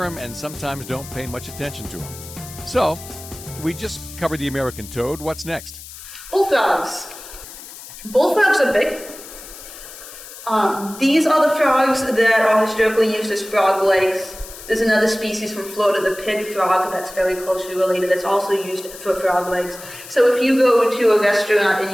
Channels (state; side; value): noise; left; hiss, 15 dB below the sound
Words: them and sometimes don't pay much attention to them. So, we just covered the American toad. What's next? Bullfrogs. Bullfrogs are big. These are the frogs that are historically used as frog legs. There's another species from Florida, the pig frog, that's very closely related, that's also used for frog legs. So if you go to a restaurant and